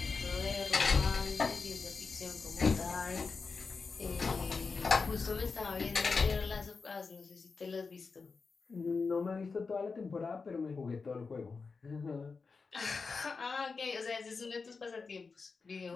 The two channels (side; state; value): right; quieter; 4.6 dB